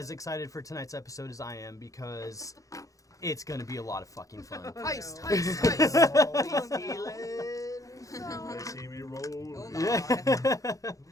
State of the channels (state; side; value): late; right; 0.16 ms